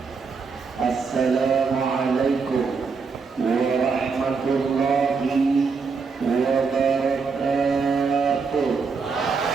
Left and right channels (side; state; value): left; quieter; 5.0 dB